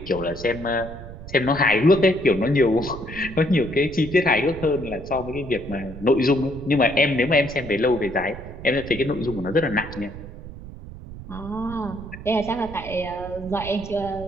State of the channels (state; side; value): noise; right; rumble, 13 dB below the sound